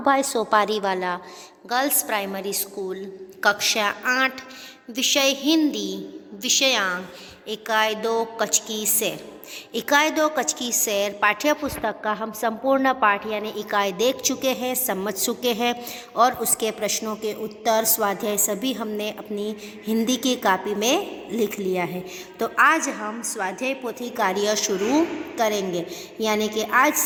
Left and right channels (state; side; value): identical; both; correlation 1.00